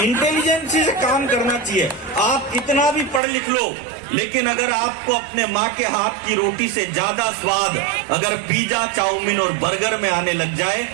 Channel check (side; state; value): left; drops out; at 3.2 s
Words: से काम करना चाहिए। आप कितना भी पढ़ लिख लो, लेकिन अगर आपको अपने माँ के हाथ की रोटी से ज्यादा स्वाद अगर पिज्जा, चाउमीन और बर्गर में आने लग जाए